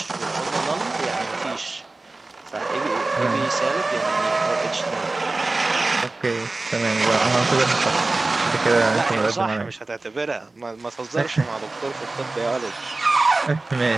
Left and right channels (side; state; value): left; quieter; 3.2 dB